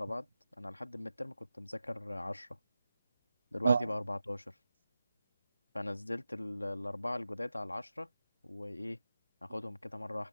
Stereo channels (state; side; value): inverted; both; correlation -0.93